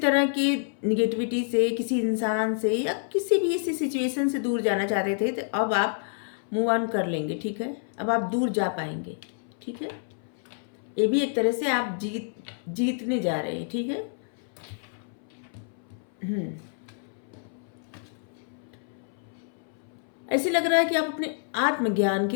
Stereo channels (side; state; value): right; silent; 59 dB below the other